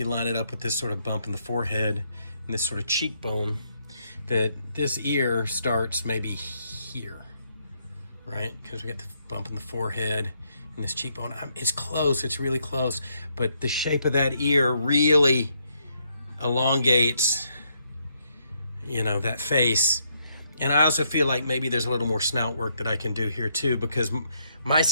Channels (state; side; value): inverted; both; correlation -0.75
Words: line it up with this sort of bump in the forehead and this sort of cheekbone, that this ear starts maybe here, right? Because we got the bump in the forehead and this cheekbone. It's close, it's really close, but the shape of that ear really elongates, you know, that face. And I also feel like maybe there's a little more snout work that I can do here too, because my